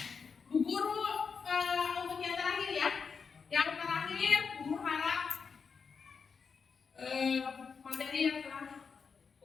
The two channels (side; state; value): right; quieter; 5.7 dB